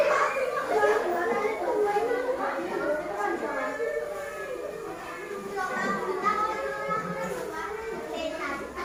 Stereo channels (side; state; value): both; identical; correlation 1.00